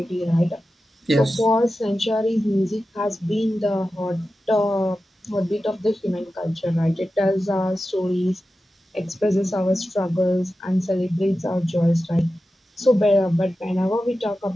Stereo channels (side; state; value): both; normal; correlation 0.93